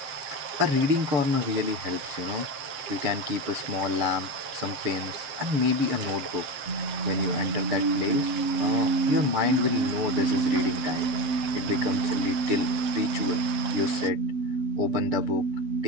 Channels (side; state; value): left; late; 7.6 ms